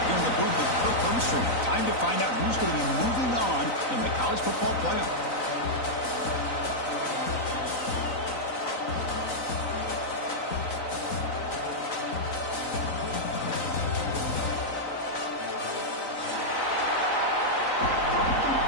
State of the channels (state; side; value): late; right; 3.9 ms